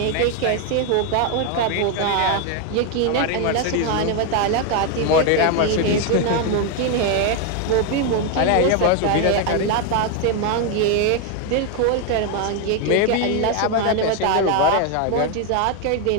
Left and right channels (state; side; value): different; both; correlation 0.01